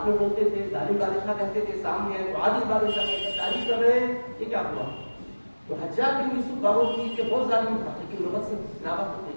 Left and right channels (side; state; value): both; inverted; correlation -1.00